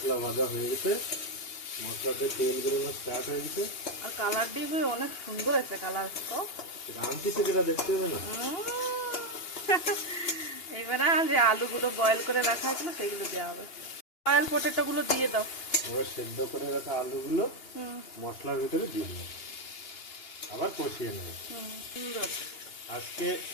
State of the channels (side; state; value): right; late; 2.8 ms